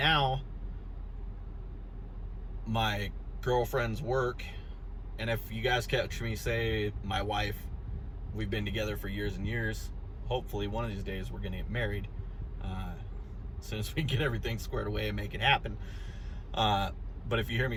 my girlfriend's work, and if you guys catch me say my wife, we've been together for years and years. Hopefully one of these days we're gonna get married, as soon as we get everything squared away and make it happen. But if you hear me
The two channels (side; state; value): both; identical; correlation 1.00